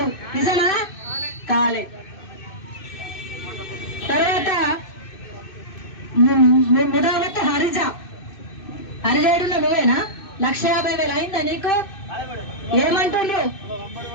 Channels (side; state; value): right; late; 2.6 ms